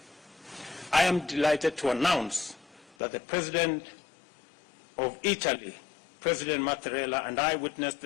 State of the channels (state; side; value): drops out; right; at 3.0 s